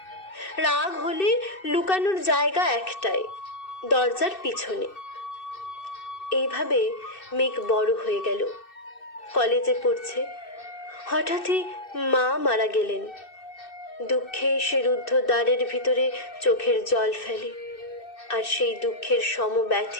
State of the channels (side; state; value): right; late; 2.6 ms